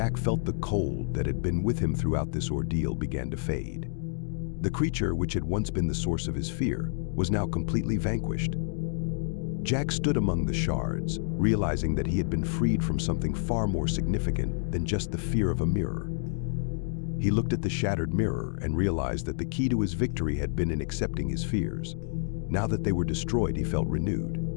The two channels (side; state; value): right; silent; digital silence